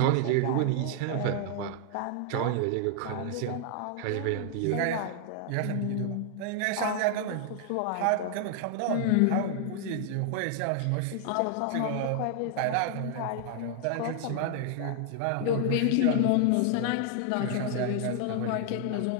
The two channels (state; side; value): different; both; correlation 0.00